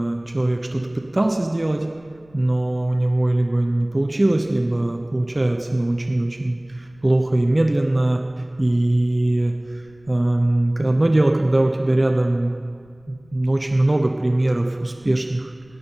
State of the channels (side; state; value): left; noise; rumble, 29 dB below the sound